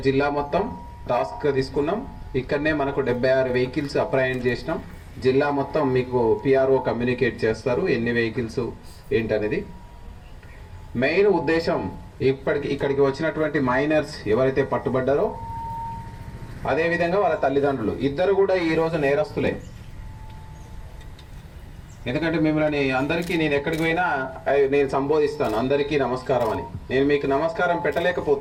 జిల్లా మొత్తం టాస్క్ తీసుకున్నాం. ఇక్కడనే మనకు 76 వెహికల్స్ అప్రహెండ్ చేసినాం. జిల్లా మొత్తం మీకు పిఆర్ఓ కమ్యూనికేట్ చేస్తారు ఎన్ని వెహికల్స్ ఏంటనేది. మెయిన్ ఉద్దేశం ఇక్కడికి వచ్చినటువంటి మైనర్స్ ఎవరైతే పట్టుబడ్డారో అదేవిధంగా వాళ్ళ తల్లిదండ్రులు ఇద్దరు కూడా ఈరోజు నేరస్తులే. ఎందుకంటే మిమ్మల్ని అందరికీ నేను ఎక్కడికి పోయినా నేను సంబోధిస్తాను అందరికీ నమస్కారం అని. నేను మీకు నమస్కారం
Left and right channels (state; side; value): identical; both; correlation 1.00